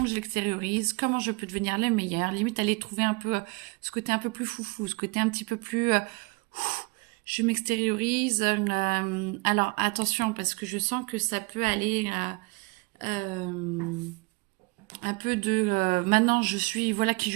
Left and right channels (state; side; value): quieter; left; 27.2 dB